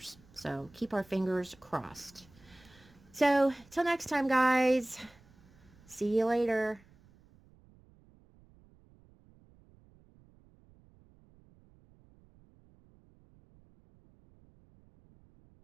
So keep our fingers crossed. So till next time, guys. See you later.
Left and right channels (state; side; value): noise; right; rumble, 27 dB below the sound